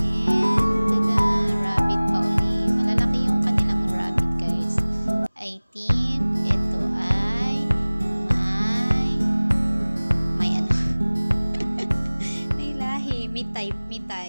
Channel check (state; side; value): inverted; both; correlation -1.00